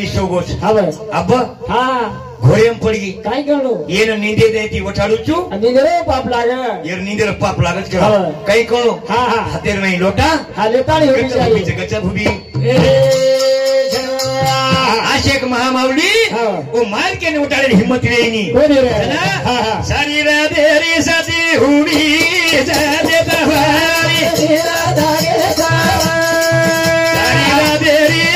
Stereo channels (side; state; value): both; identical; correlation 1.00